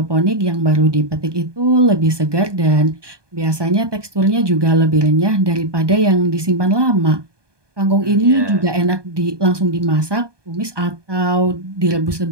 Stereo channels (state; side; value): late; left; 1.2 ms